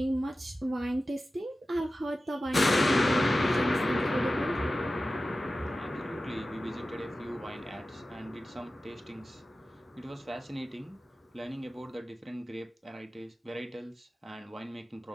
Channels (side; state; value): both; normal; correlation 0.94